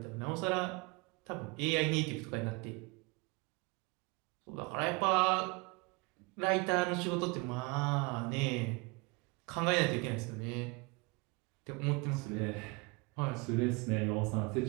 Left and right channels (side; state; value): left; quieter; 27.6 dB